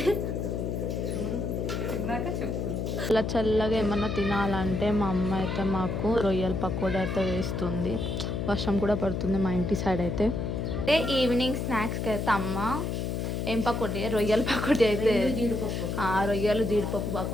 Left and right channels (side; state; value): left; noise; hum, 2 dB below the sound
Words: అలా చల్లగా ఏమన్నా తినాలంటే మా అమ్మ అయితే మాకు రొయ్యల పకోడీ అయితే వేస్తుంది. వర్షం కూడా పడుతుంది మా ఇంటి సైడ్ అయితే. ఈవినింగ్ స్నాక్స్కి అయితే అమ్మ ఏం పకోడీ, రొయ్యల పకోడీ అయితే రొయ్యలు జీడిపప్పు